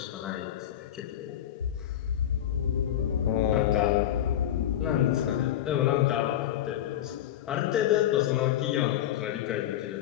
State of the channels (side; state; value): right; quieter; 11.5 dB